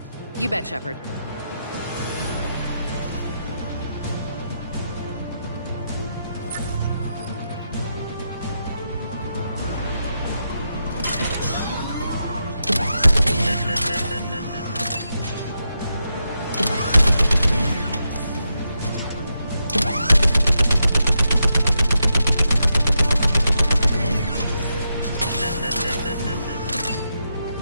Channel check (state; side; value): inverted; both; correlation -0.85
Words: You bet, Shepard.